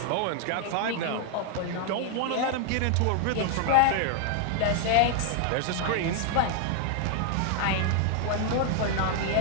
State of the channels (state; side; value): different; both; correlation 0.00